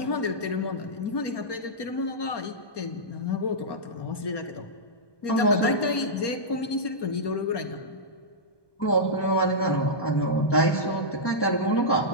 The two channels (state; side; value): late; right; 1.2 ms